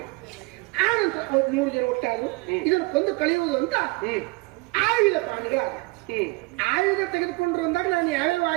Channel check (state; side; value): quieter; left; 26.3 dB